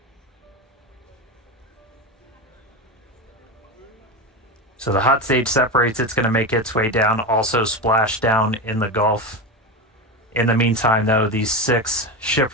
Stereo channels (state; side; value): normal; both; correlation 0.19